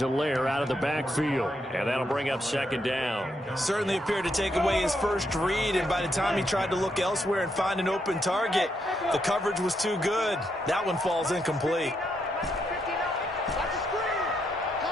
out of the backfield. And that'll bring up 2nd down. Certainly appeared to take away his first read, and by the time he tried to look elsewhere and find an open target, the coverage was too good. That one falls incomplete.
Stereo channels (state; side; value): normal; both; correlation 0.79